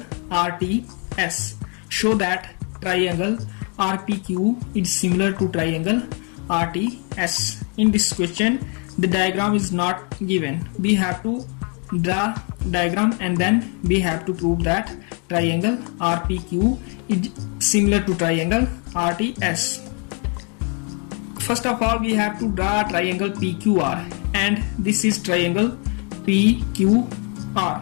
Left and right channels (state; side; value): quieter; right; 37.0 dB